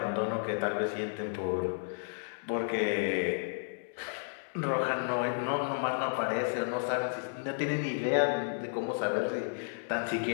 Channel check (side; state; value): right; silent; 56 dB below the other